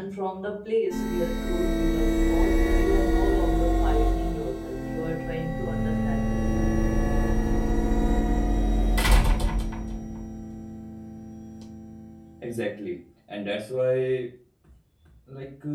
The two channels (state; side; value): identical; both; correlation 1.00